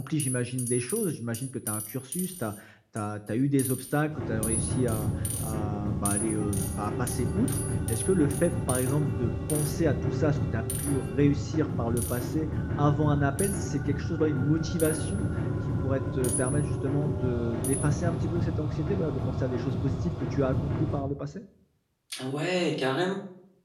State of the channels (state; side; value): identical; both; correlation 1.00